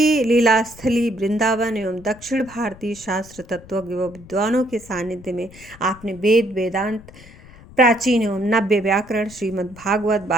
लीला स्थली वृंदावन एवं दक्षिण भारतीय शास्त्र तत्वज्ञ व विद्वानों के सानिध्य में आपने वेद, वेदांत, प्राचीन एवं नव्य व्याकरण, श्रीमद् भागवत,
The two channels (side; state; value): left; noise; rumble, 21 dB below the sound